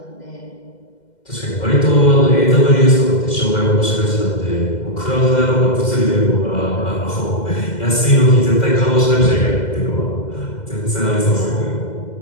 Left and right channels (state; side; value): late; right; 2.1 ms